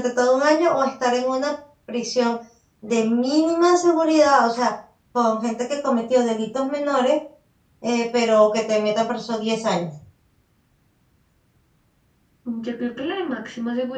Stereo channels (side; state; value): both; identical; correlation 1.00